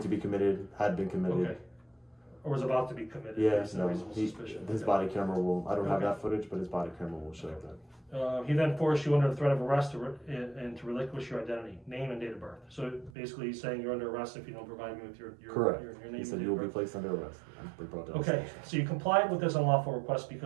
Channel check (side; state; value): left; drops out; at 13.1 s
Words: to be committed, had been committed. Okay. Or was about to be committed? Yeah, based on reasonable suspicion. His body camera will, I don't have that footage, but his body camera will show that. He then forced you under the threat of arrest and to relinquish your identity, name, and date of birth. So basically, he's saying you're under arrest if you don't provide me with your Correct. Your name. He and said date you will of be birth. placed under arrest. They brought that Okay, so you complied with this unlawful request